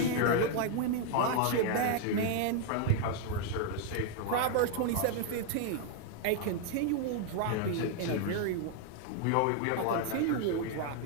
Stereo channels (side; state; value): both; different; correlation 0.00